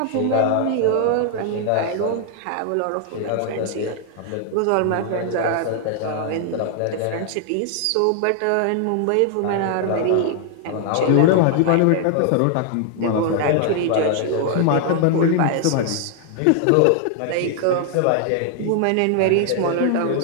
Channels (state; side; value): different; both; correlation 0.00